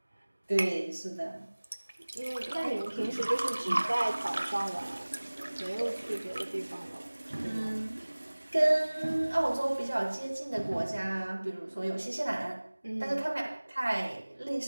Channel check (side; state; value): both; inverted; correlation -1.00